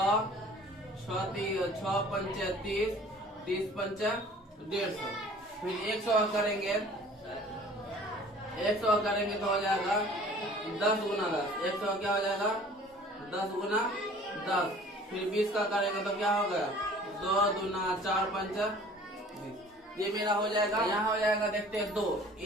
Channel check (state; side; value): normal; both; correlation 0.49